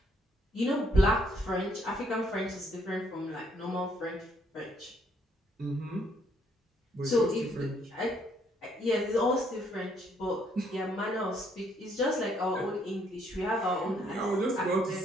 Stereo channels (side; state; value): both; normal; correlation 0.69